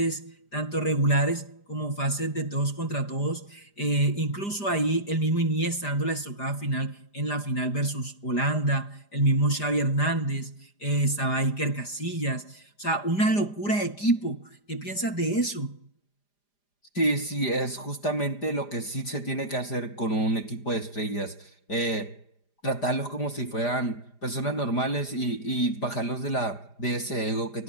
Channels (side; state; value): right; late; 4.9 ms